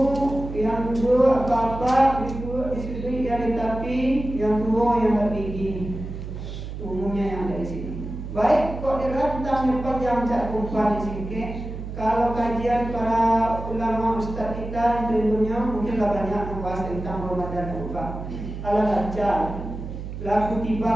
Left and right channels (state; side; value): noise; right; hum, 8 dB below the sound